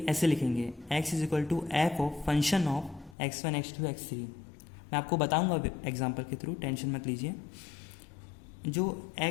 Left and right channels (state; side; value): drops out; right; at 3.2 s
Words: ऐसे लिखेंगे, x is equal to F of function of x1 x2 x3. मैं आपको बताऊंगा एग्जांपल के थ्रू, टेंशन मत लीजिए. जो